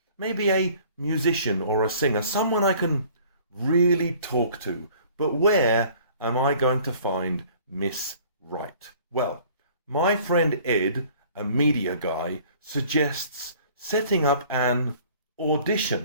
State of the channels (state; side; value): inverted; both; correlation -0.52